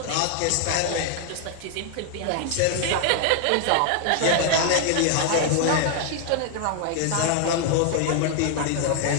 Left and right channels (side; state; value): both; different; correlation 0.00